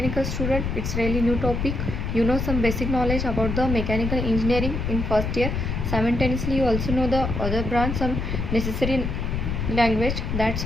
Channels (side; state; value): left; noise; rumble, 2 dB below the sound